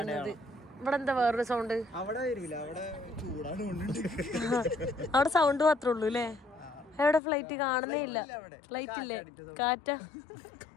ഇവിടെ എന്താ വേറൊരു സൗണ്ട്? അവിടെ വരില്ല, അവിടെ ചൂടാണ്. അവിടെ സൗണ്ട് മാത്രമേ ഉള്ളൂ അല്ലേ? എവിടെ ഫ്ലൈറ്റ് കാണുന്നേ ഇല്ല. ഫ്ലൈറ്റ് ഇല്ലേ? കാറ്റാ.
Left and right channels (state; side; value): drops out; right; at 7.2 s